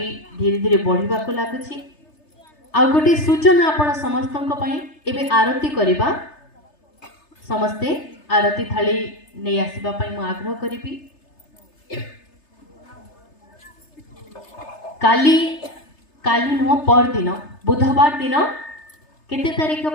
धीरे धीरे बढ़िबा को लागुची आ गोटे सूचना आपण समस्तंक पई एबे आरती करिबा समस्ते आरती थाली नहीं आसवा मु आग्रह करी काली काली नुह पर दिन बुधवार दिन केते तारीख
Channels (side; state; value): right; late; 3.3 ms